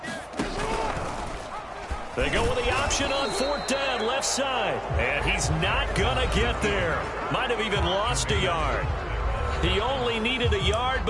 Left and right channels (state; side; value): identical; both; correlation 1.00